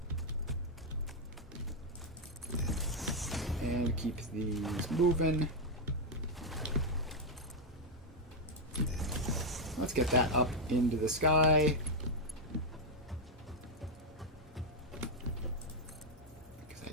And keep these moving. Let's get that up into the sky. Because I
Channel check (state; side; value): normal; both; correlation 0.01